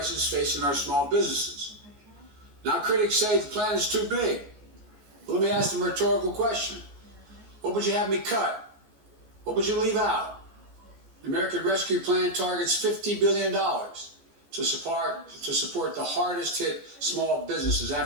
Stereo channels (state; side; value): late; left; 14 ms